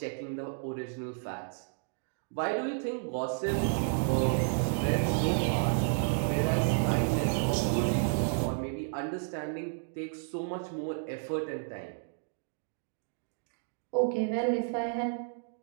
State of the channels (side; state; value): left; silent; digital silence